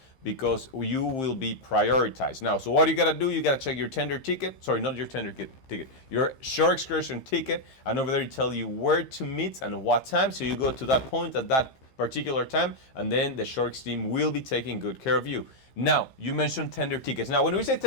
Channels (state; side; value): late; right; 15 ms